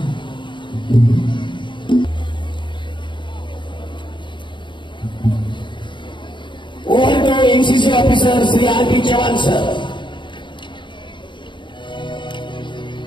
Over to MCC officer Shri R P. Chavan sir.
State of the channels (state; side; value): late; right; 0.23 ms